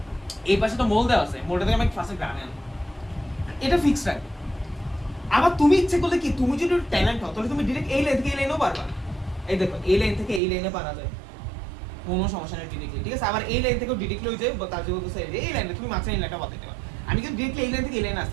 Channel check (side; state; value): left; drops out; at 10.4 s